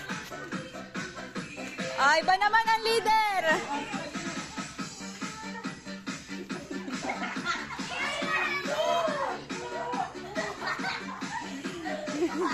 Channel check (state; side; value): identical; both; correlation 1.00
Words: Ay, iba naman ang leader.